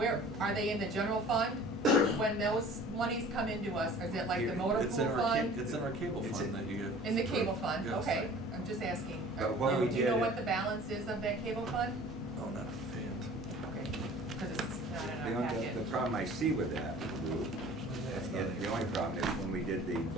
are they in the general fund? When those monies come into us, is it like the motor It's pool in our fund? It's in our cable It's fund in- that you get. In the cable fund, Yes. okay, I'm just asking. But what we Do you know did- what the balance is of that cable fund? Oh, not offhand. Okay, because it's, not in The our only, packet. the problem I see with that, Lou, and the only problem is when we did the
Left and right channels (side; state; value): both; normal; correlation 0.47